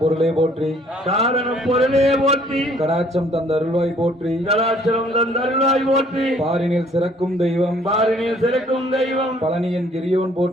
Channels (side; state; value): both; normal; correlation 0.60